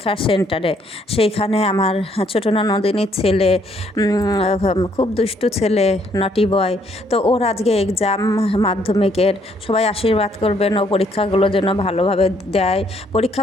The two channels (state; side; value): normal; both; correlation 0.68